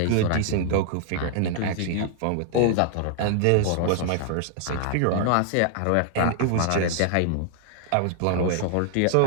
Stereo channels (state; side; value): different; both; correlation 0.00